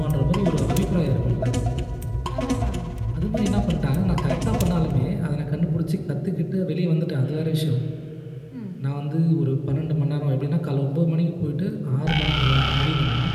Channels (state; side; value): identical; both; correlation 1.00